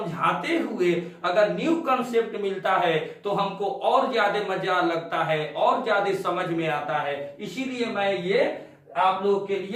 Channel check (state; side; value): identical; both; correlation 1.00